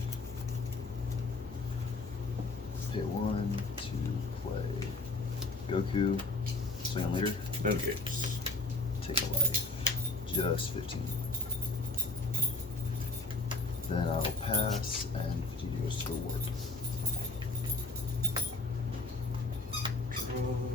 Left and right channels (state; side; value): quieter; right; 3.1 dB